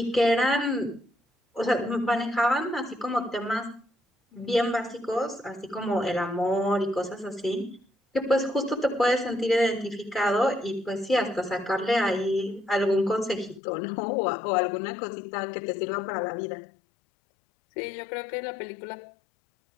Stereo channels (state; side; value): drops out; right; at 13.6 s